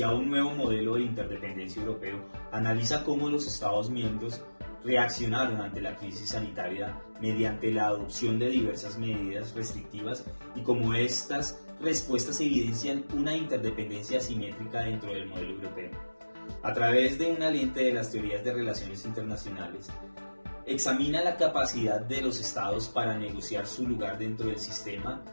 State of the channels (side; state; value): both; inverted; correlation -1.00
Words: un nuevo modelo de interdependencia europeo, analiza cómo los Estados miembros reaccionaron ante la crisis sanitaria mediante la adopción de diversas medidas restrictivas y cómo estas respuestas evidencian una interdependencia asimétrica dentro del modelo europeo. A través de una lente de las teorías de relaciones internacionales, examina la capacidad de los estados para negociar su lugar dentro del sistema,